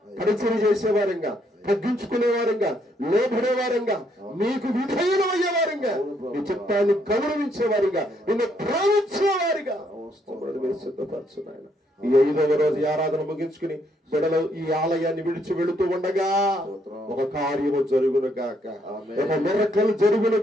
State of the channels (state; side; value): normal; both; correlation 0.72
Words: పరిచయం చేసేవారంగా, తగ్గించుకునేవారంగా, లోబడేవారంగా, మీకు విధేయులయ్యేవారంగా, నీ చిత్తాన్ని గౌరవించేవారిగా, నిన్ను ప్రేమించేవారిగా సిద్ధపరచున్నాయన. ఈ 5వ రోజు ఆరాధన ముగించుకుని బిడ్డలు ఈ ఆలయాన్ని విడిచి వెళుతూ ఉండగా ఒక కార్యము జరుగును గాక, ఒక మిరకలు జరుగును